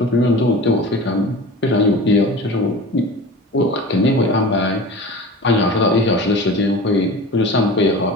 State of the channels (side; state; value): both; normal; correlation 0.35